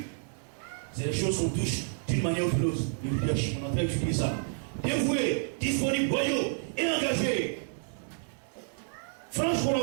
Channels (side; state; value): left; silent; digital silence